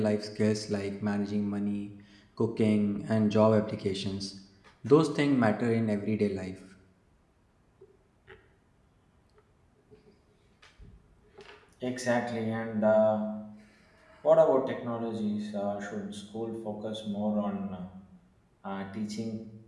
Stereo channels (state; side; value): identical; both; correlation 1.00